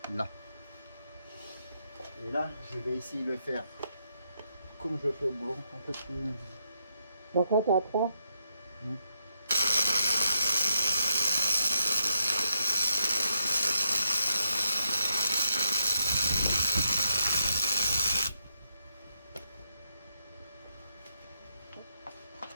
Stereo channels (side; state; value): both; inverted; correlation -0.80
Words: Là. Et là, je vais essayer de le faire comme je le fais au boulot, un peu plus. Donc là, t'es à 3.